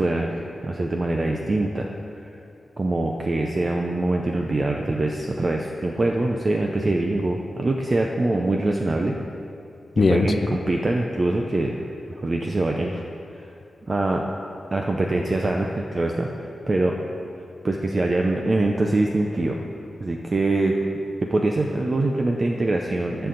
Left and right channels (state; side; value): normal; both; correlation 0.94